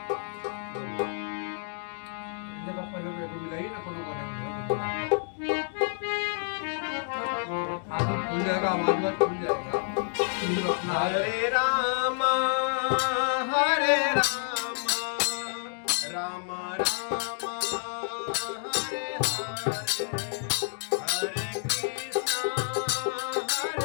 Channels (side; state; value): right; silent; digital silence